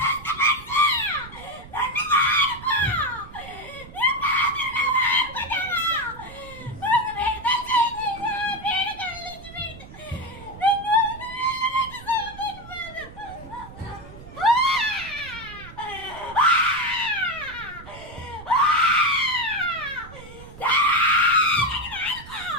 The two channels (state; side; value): noise; right; rumble, 17 dB below the sound